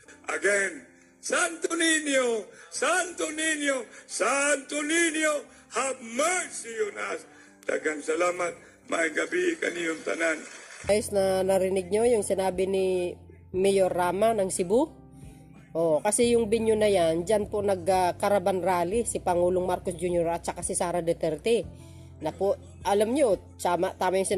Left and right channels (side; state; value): both; identical; correlation 1.00